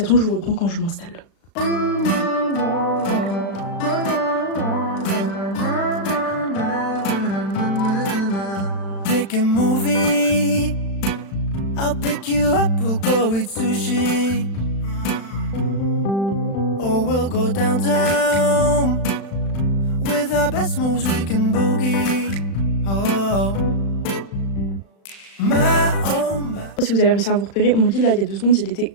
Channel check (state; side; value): late; right; 36 ms